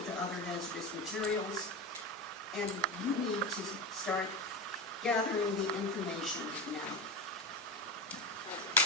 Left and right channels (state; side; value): normal; both; correlation 0.21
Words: other hazardous materials. And you need to start gathering the information now.